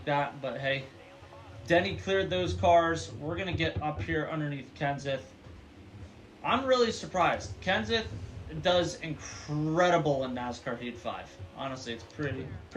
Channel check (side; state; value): both; identical; correlation 1.00